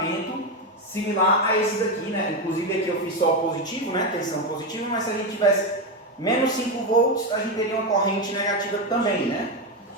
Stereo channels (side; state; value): both; normal; correlation 0.11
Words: similar a esse daqui, né? Inclusive aqui eu fiz só o positivo, né? Tensão positiva, mas se a gente tivesse menos 5 volts, a gente teria uma corrente negativa também, né?